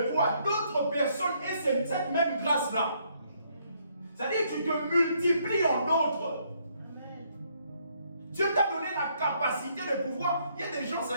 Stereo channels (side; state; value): both; inverted; correlation -0.70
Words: toi, d'autres personnes aient cette même grâce-là. C'est-à-dire que tu te multiplies en d'autres. Dieu t'a donné la capacité de pouvoir. Il y a des gens,